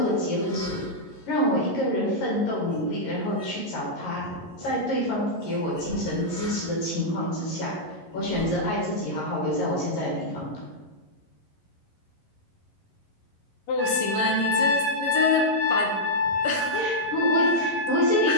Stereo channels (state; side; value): late; right; 11 ms